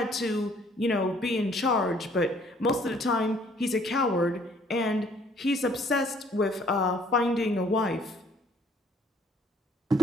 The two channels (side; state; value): both; normal; correlation 0.61